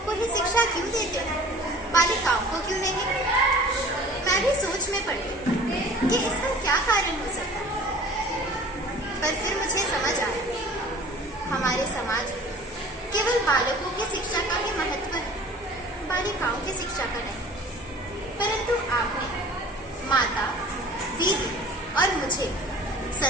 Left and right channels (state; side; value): normal; both; correlation 0.45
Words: को ही शिक्षा क्यों देते हो, बालिकाओं को क्यों नहीं? मैं भी सोच में पड़ गई कि इसका क्या कारण हो सकता है, पर फिर मुझे समझ आया हमारे समाज में केवल बालकों की शिक्षा का ही महत्व है, बालिकाओं की शिक्षा का नहीं। परंतु आपने माता, दीदी और मुझे